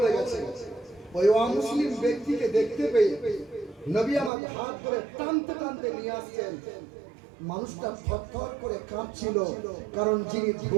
গেছে, ওই অমুসলিম ব্যক্তিকে দেখতে পেয়ে নবী আমার হাত ধরে টানতে টানতে নিয়ে আসছেন। মানুষটা থরথর করে কাঁপছিল, কারণ যিনি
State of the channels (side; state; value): left; drops out; at 4.3 s